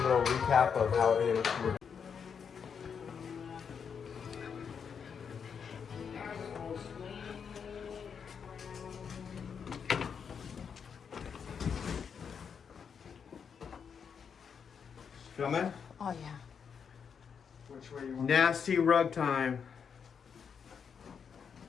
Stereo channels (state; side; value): quieter; right; 6.7 dB